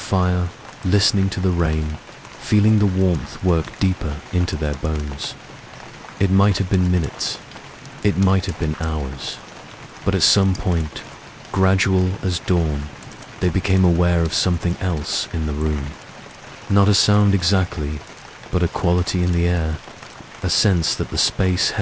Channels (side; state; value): both; identical; correlation 1.00